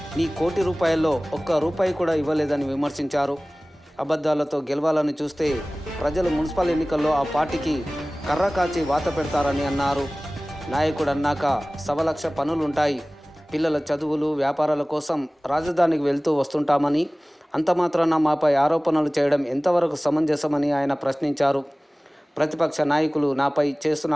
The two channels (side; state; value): both; normal; correlation 0.98